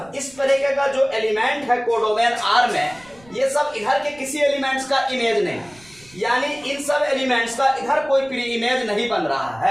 इस तरीके का जो एलिमेंट है कोडोमेन R में, ये सब इधर के किसी एलिमेंट्स का इमेज नहीं, यानी इन सब एलिमेंट्स का इधर कोई प्री इमेज नहीं बन रहा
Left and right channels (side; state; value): right; noise; rumble, 26 dB below the sound